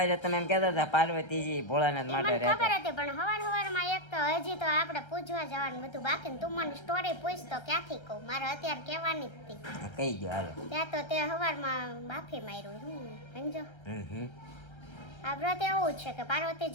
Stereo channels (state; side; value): late; right; 1.3 ms